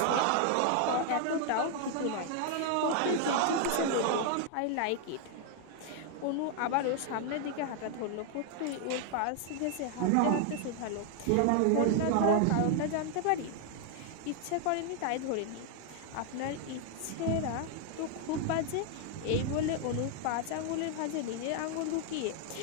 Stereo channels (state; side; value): different; both; correlation 0.00